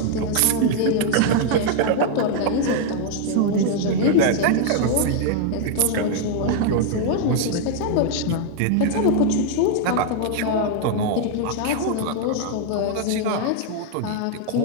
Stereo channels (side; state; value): both; different; correlation 0.00